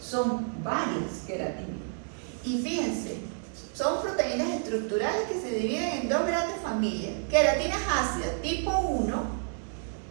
son varias queratinas. Y fíjense, son proteínas estructurales que se dividen en dos grandes familias. Queratinas ácidas tipo 1,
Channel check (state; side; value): silent; left; 58 dB below the other